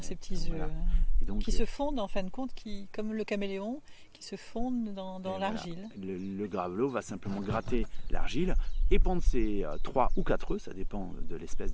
ces petits œufs, qui se fondent en fin de compte, comme le caméléon, qui se fondent dans l'argile. Voilà. Le gravelot va simplement gratter l'argile et pondre ses 3 ou 4 œufs, ça dépend de l'espèce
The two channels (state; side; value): identical; both; correlation 1.00